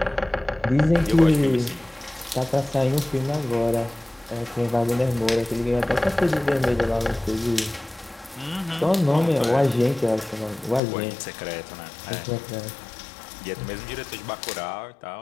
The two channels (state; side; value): drops out; right; at 10.8 s